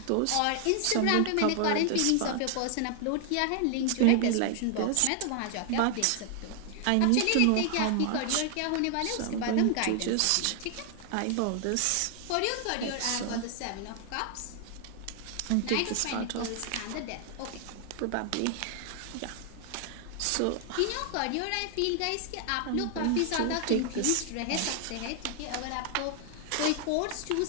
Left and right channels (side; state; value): both; different; correlation 0.00